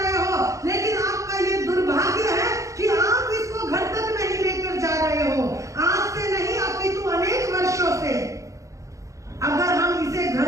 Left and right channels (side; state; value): left; late; 0.15 ms